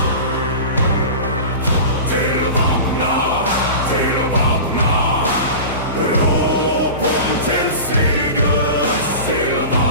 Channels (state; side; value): inverted; both; correlation -0.32